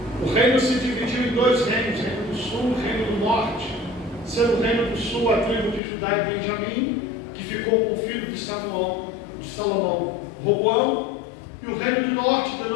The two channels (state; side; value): drops out; right; at 5.8 s